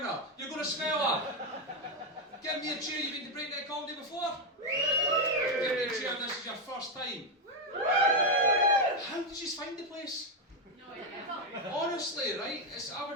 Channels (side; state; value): both; normal; correlation 0.05